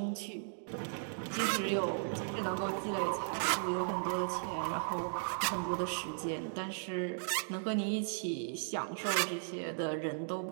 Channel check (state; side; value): silent; left; digital silence